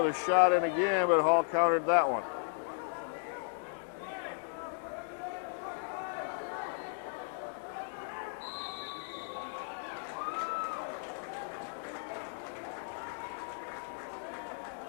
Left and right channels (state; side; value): silent; right; digital silence